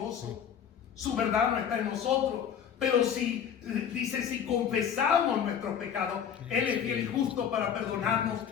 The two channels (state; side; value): quieter; right; 8.2 dB